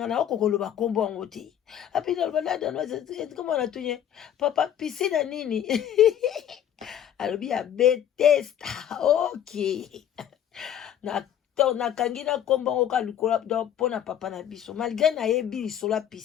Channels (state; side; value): quieter; right; 10.1 dB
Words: na okokoloba kombo yango te api naloba la danoise komona tunye papa piscine ya nini alobi ya Bethesda. Ok na nakangi na kombo ngo ka likola pona papa na biso malgré na yebi lisola